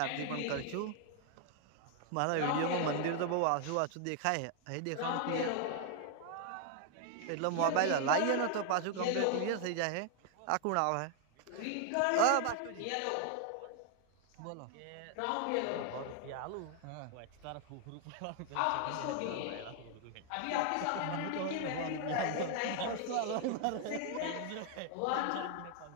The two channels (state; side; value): different; both; correlation 0.00